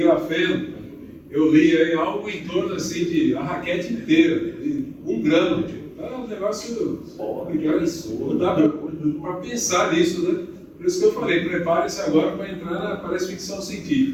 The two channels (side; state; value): both; identical; correlation 1.00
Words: eu li aí algo em torno assim de a raquete inteira, de 1 grama. É um negócio não dá para pensar nisso, né? Por isso que eu falei, prepare-se agora para entrar na parece ficção